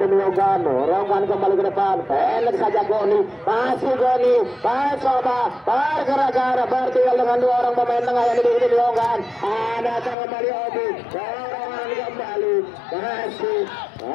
Yonggan, dorongkan kembali ke depan, pendek saja Goni, masih Goni mencoba pergerakan bertinggal dengan 2 orang pemain tengah yang dimiliki tim Yonggan. Ada kembali Obi, dorongan kembali, masih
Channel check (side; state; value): right; drops out; at 10.2 s